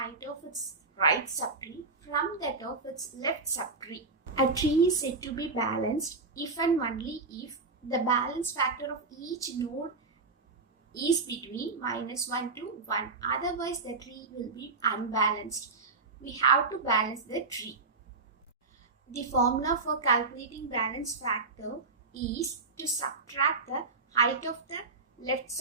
of its right subtree from that of its left subtree. A tree is said to be balanced if and only if the balance factor of each node is between -1 to 1. Otherwise, the tree will be unbalanced. We have to balance the tree. The formula for calculating balance factor is to subtract the height of the left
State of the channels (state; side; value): quieter; left; 4.0 dB